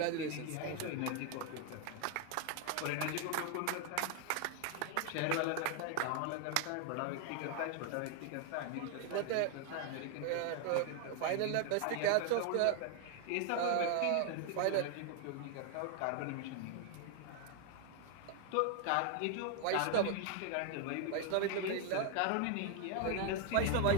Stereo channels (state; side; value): different; both; correlation 0.00